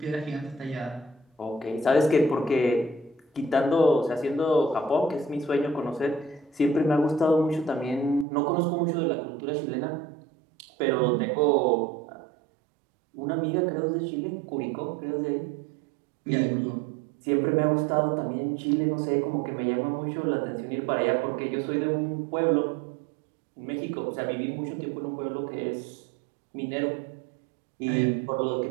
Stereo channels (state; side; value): drops out; left; at 8.2 s